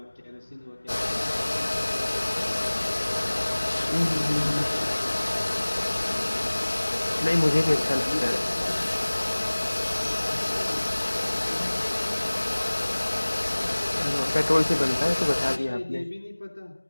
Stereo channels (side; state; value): both; inverted; correlation -1.00